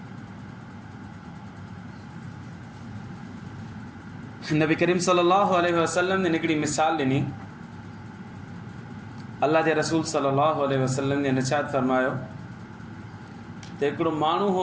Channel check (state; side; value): identical; both; correlation 1.00